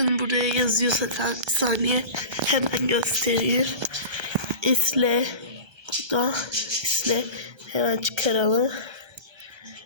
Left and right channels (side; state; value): left; late; 1.3 ms